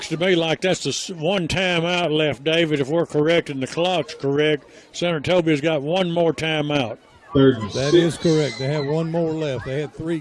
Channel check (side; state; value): both; identical; correlation 1.00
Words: to me like that's the one timeout left, David, if we're correct and the clock's correct. Senatobia's got one more timeout. That is correct. They have one more left. They had 3